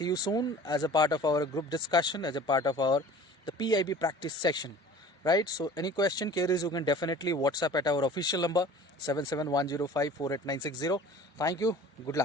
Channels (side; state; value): both; normal; correlation 0.44